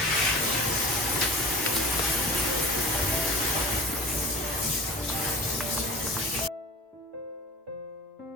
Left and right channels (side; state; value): both; normal; correlation 0.41